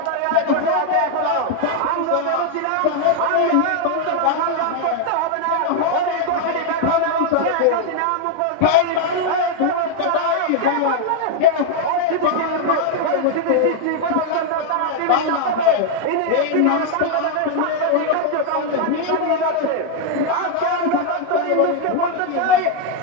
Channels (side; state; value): both; different; correlation 0.00